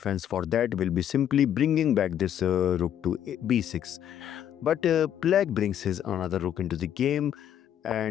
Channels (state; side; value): quieter; right; 10.1 dB